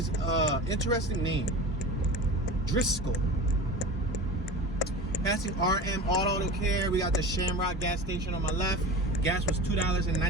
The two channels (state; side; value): normal; both; correlation 0.32